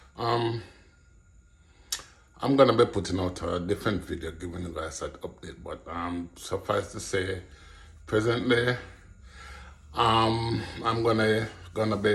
Um, I'm gonna be putting out a different video giving you guys that update, but suffice to say, presently, I'm gonna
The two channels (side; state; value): both; identical; correlation 1.00